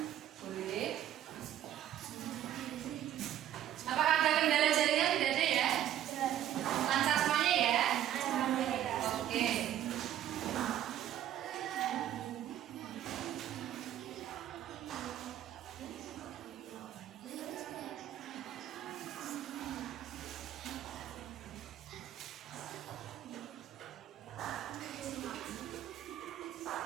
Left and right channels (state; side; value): quieter; left; 11.5 dB